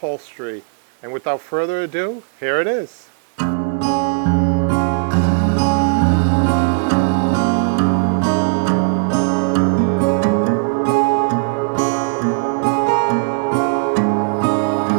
And without further ado, here it is.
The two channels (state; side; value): silent; left; 62 dB below the other